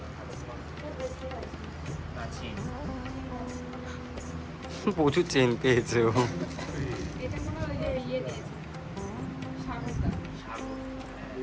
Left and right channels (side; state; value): both; identical; correlation 1.00